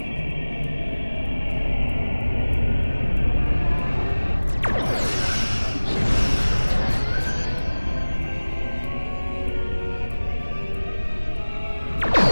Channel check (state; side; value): inverted; both; correlation -1.00